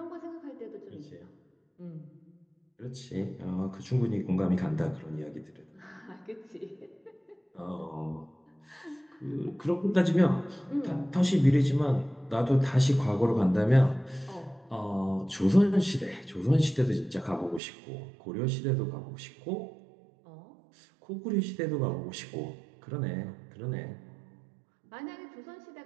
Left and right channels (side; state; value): left; drops out; at 17.6 s